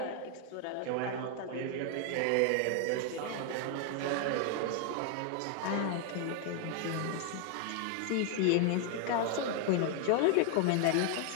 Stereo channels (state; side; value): different; both; correlation 0.00